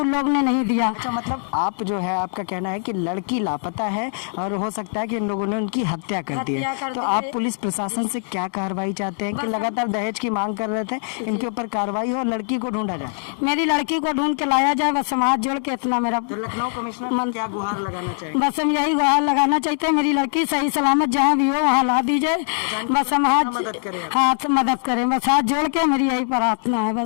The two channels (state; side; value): silent; right; digital silence